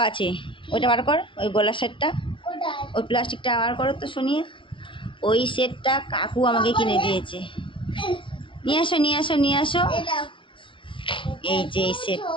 আছে, ওইটা বার কর, ওই গলার সেটটা, ওই প্লাস্টিকটা বার করো তো শুনিয়ে। ওই সেটটা কাকু আমাকে কিনে দিয়েছে। নিয়ে আসো। এই যে এই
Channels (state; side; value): late; right; 0.25 ms